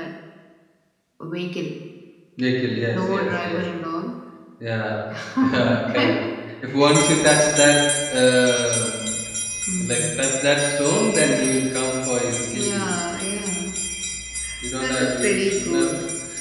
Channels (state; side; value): identical; both; correlation 1.00